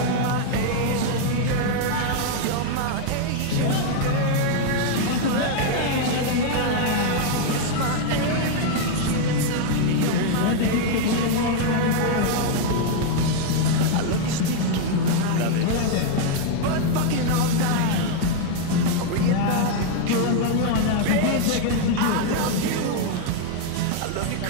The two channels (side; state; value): both; different; correlation 0.00